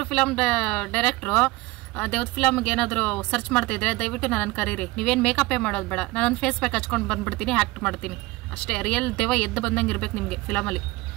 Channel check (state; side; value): quieter; left; 20.9 dB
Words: ಫಿಲಮ್ ಡೈರೆಕ್ಟ್ರು ದೇವ್ದ ಫಿಲಮ್ಗೆ ಏನಾದ್ರು ಸರ್ಚ್ ಮಾಡ್ತಾ ಇದ್ರೆ ದಯವಿಟ್ಟು ನನ್ನನ್ನು ಕರೀರಿ. ನೀವೇನು ಮೇಕಪ್ ಮಾಡೋದು ಬೇಡ, ನಾನು ಫೇಸ್ ಪ್ಯಾಕ್ ಹಚ್ಕೊಂಡು ಬಂದ್ಬಿಡ್ತೀನಿ, ಆಕ್ಟ್ ಮಾಡ್ತೀನಿ ಅಷ್ಟೇ. ರಿಯಲ್ ದೇವ ಎದ್ದು ಬಂದಂಗೆ ಇರ್ಬೇಕು ನಿಮ್ಗೆ ಫಿಲಮಲ್ಲಿ.